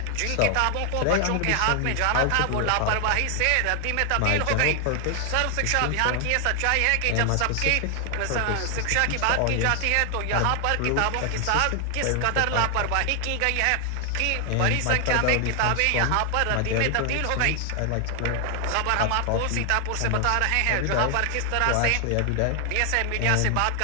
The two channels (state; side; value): different; both; correlation 0.00